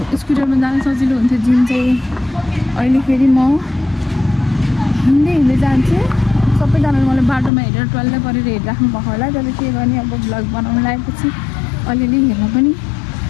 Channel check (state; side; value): drops out; right; at 7.5 s